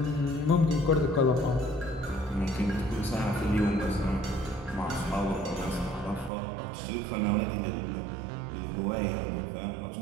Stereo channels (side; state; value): left; drops out; at 6.3 s